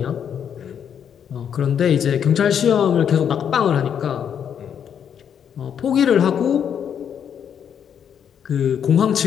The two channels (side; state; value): right; quieter; 8.3 dB